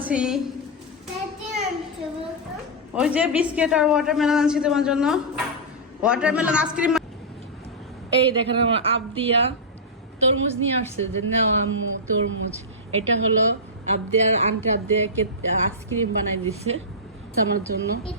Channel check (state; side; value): normal; both; correlation -0.10